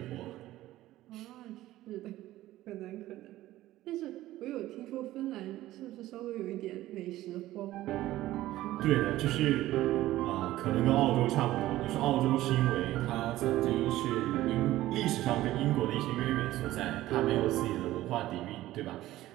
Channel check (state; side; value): quieter; left; 15.5 dB